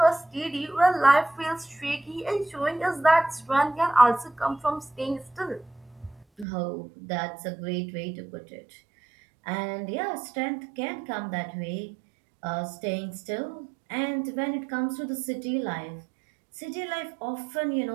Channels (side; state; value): left; drops out; at 6.5 s